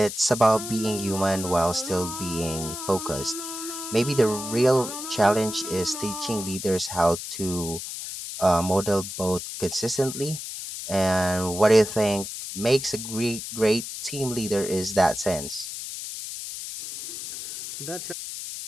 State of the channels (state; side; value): noise; left; hiss, 8 dB below the sound